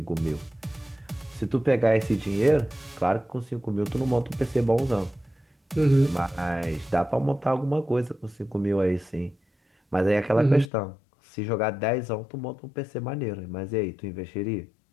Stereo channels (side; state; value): right; drops out; at 10.7 s